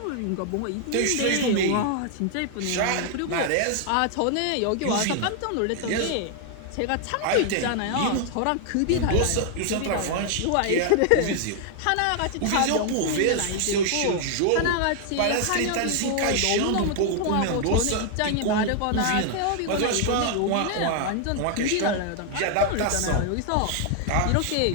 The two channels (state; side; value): different; both; correlation 0.00